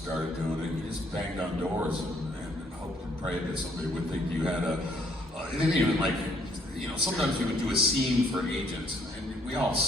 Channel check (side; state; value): both; normal; correlation 0.68